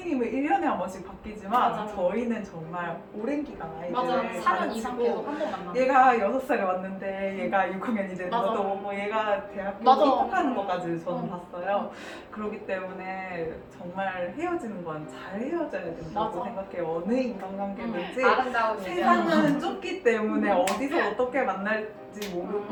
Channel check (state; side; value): identical; both; correlation 1.00